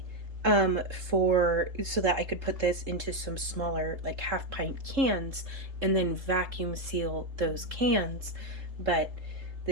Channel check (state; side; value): late; left; 3.3 ms